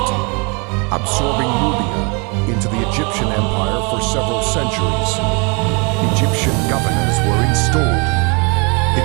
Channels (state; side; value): quieter; left; 32.0 dB